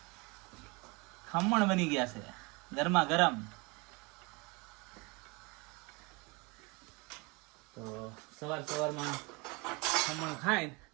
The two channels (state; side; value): quieter; left; 27.5 dB